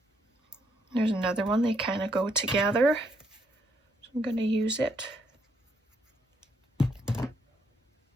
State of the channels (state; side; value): normal; both; correlation 0.73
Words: There's another one, they kind of go together. So I'm going to use it.